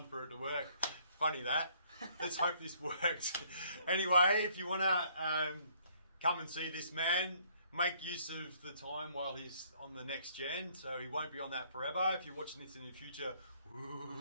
for it to work. Funny that. Let's hope this works. Anyway, if you want to come and see this man, make use of the time while he's on the next gen, so he won't be on that forever. If you're watching this in the future,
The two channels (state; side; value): inverted; both; correlation -0.64